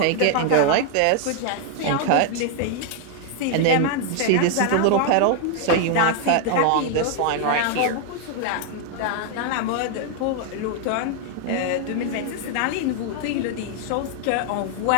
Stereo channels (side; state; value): both; different; correlation 0.00